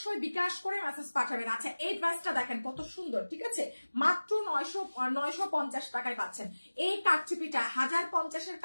বিকাশ করে মেসেজ পাঠাবেন। আচ্ছা এই ড্রেসটা দেখেন কত সুন্দর, ঠিক আছে? মাত্র 950 টাকায় পাচ্ছেন। এই কাটচুপিটা 1050-এর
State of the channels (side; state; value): both; inverted; correlation -1.00